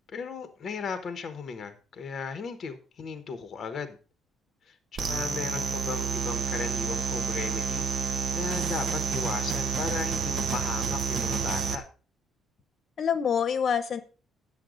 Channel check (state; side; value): normal; both; correlation 0.56